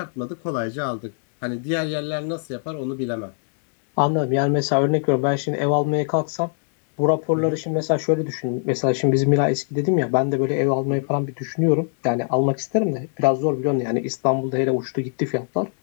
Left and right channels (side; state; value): right; silent; digital silence